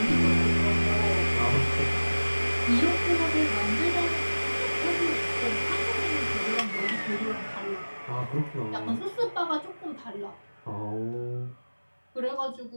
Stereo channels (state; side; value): inverted; both; correlation -1.00